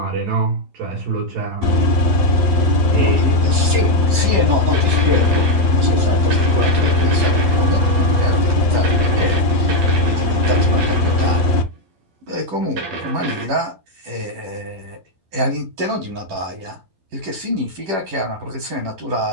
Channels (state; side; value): late; left; 12 ms